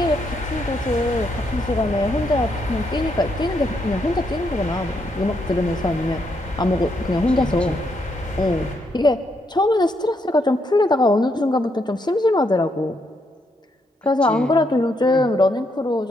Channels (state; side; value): normal; both; correlation 0.77